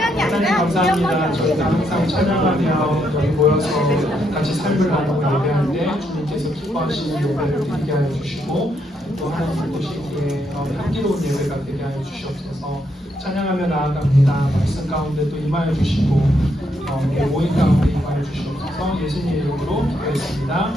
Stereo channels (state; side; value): normal; both; correlation 0.77